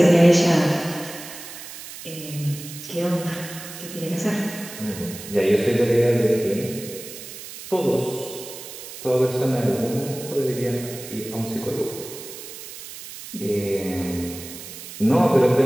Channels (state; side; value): noise; right; hiss, 13 dB below the sound